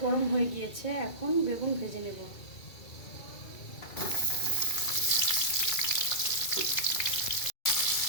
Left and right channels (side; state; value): right; late; 2.3 ms